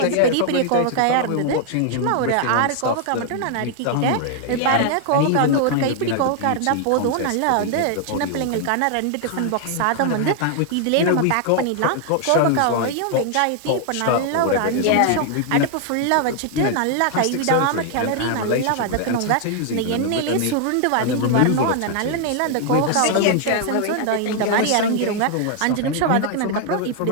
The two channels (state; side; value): different; both; correlation 0.00